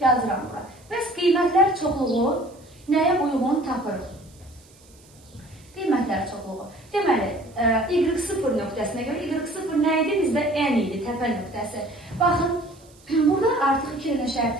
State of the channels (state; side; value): noise; right; hiss, 28 dB below the sound